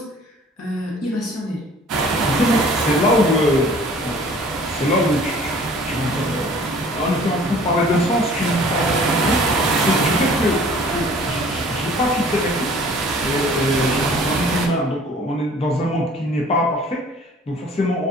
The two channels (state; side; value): normal; both; correlation 0.51